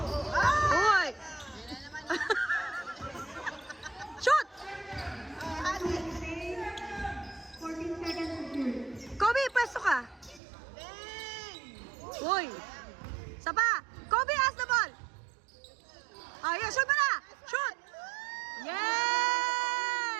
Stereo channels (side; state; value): left; drops out; at 10.4 s